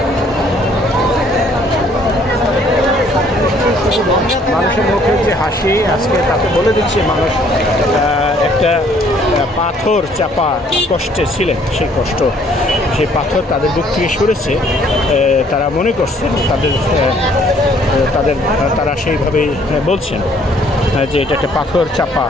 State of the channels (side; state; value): both; normal; correlation 0.62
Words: মানুষের মুখে যে হাসি আজকে তাতে বলে দিচ্ছে মানুষ একটা পাথর চাপা কষ্টে ছিলেন, সেই কষ্ট, সেই পাথর তাদের বুক থেকে সরেছে। তারা মনে করছেন তারা সেইভাবেই বলছেন যে এটা একটা পাথর চাপা